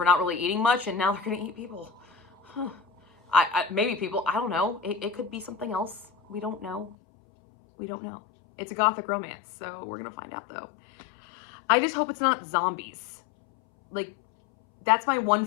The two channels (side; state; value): right; drops out; at 7.0 s